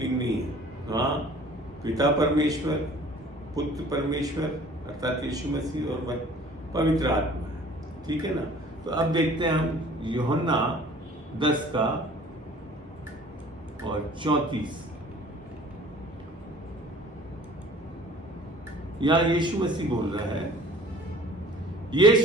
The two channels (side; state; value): both; normal; correlation 0.49